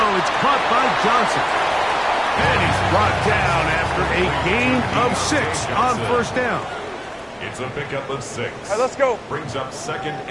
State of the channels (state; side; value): identical; both; correlation 1.00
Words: It's caught by Johnson. And he's brought down after a gain of 6 on 1st down. It's a pickup of 6. Hey, let's go. Brings up 2nd